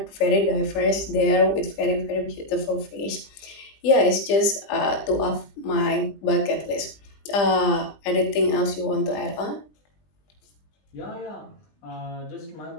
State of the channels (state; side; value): late; right; 20 ms